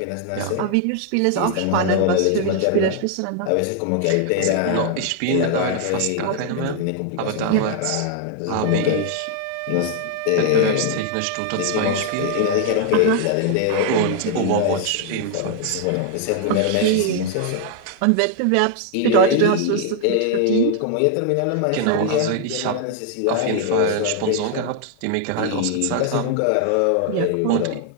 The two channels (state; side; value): different; both; correlation 0.00